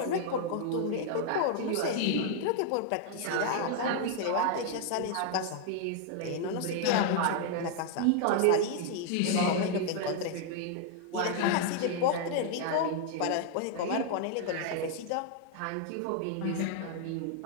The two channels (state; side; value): different; both; correlation 0.00